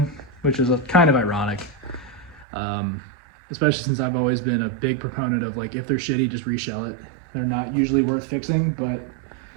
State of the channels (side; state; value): left; drops out; at 2.5 s